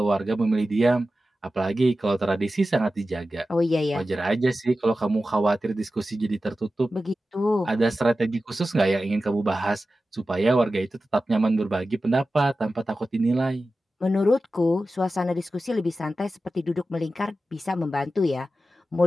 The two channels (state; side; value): normal; both; correlation 0.94